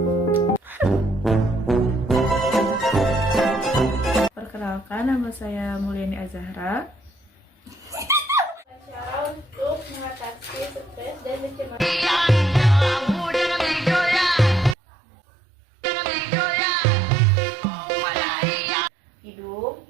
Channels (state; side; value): drops out; left; at 14.8 s